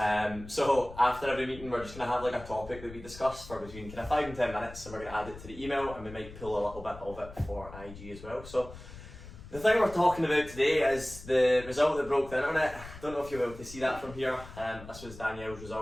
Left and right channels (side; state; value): left; noise; rumble, 15 dB below the sound